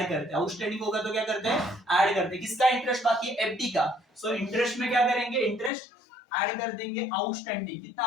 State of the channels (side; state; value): right; drops out; at 5.7 s